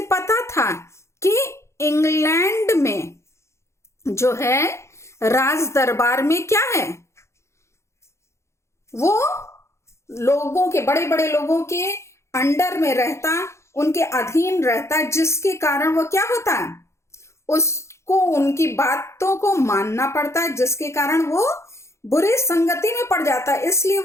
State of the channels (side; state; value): right; late; 0.13 ms